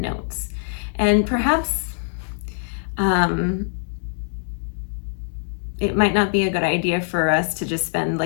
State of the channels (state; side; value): silent; right; digital silence